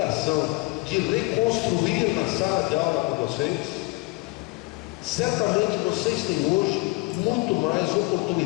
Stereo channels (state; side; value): quieter; right; 24.6 dB